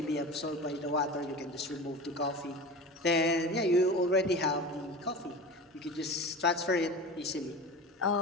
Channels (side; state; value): both; normal; correlation 0.32